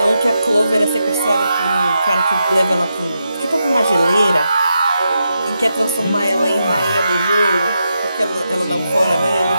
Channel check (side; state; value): both; inverted; correlation -0.85